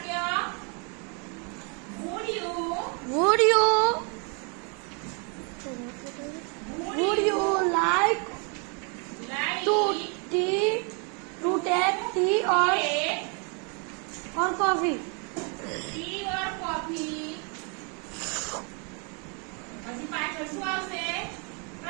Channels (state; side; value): quieter; left; 35.9 dB